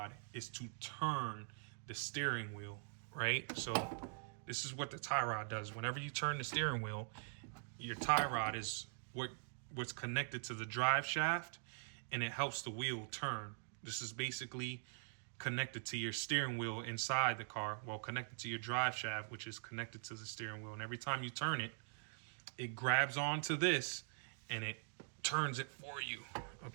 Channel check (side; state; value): left; silent; digital silence